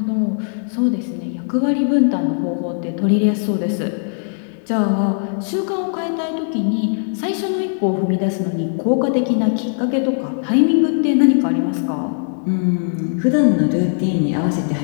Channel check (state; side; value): silent; right; 66 dB below the other